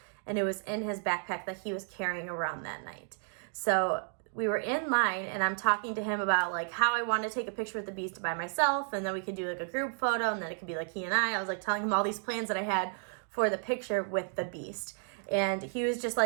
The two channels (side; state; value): left; silent; 56 dB below the other